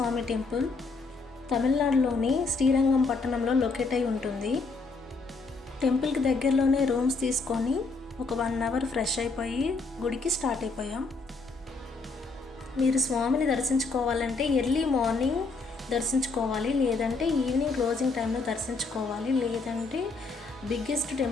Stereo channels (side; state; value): right; quieter; 3.9 dB